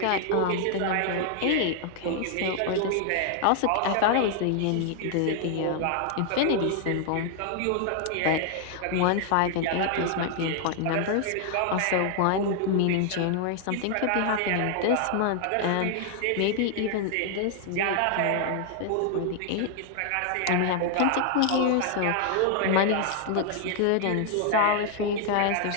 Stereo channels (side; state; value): both; different; correlation 0.00